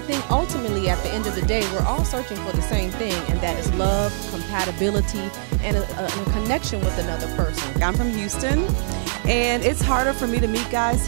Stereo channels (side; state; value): left; silent; digital silence